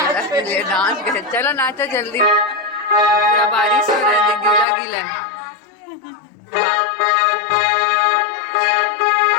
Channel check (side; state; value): right; drops out; at 4.7 s